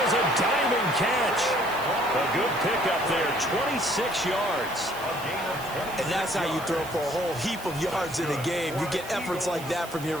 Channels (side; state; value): right; noise; hiss, 16 dB below the sound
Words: a diving catch. A good pickup there, 26 yards. And that's how you throw for a whole heap of yards in a game. You get efforts like that from your